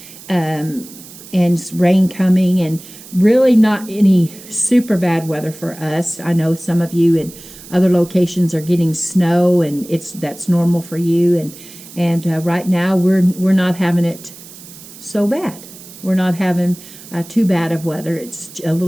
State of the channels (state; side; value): noise; right; hiss, 18 dB below the sound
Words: and rain coming, and really not any super bad weather for us. I know some of you in other locations are getting snow, and that's normal for you. And right now we're not having it so bad. We're not having too bad of weather. It's a